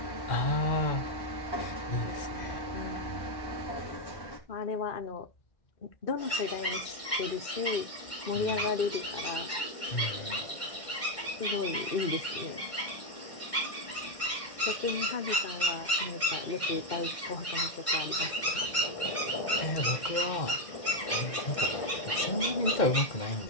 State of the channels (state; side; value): late; right; 2.1 ms